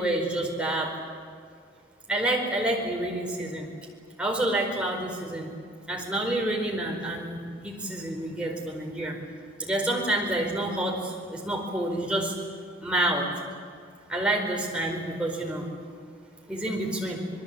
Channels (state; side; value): normal; both; correlation 0.52